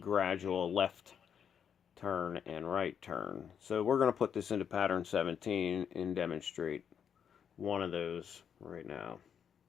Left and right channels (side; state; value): right; quieter; 7.9 dB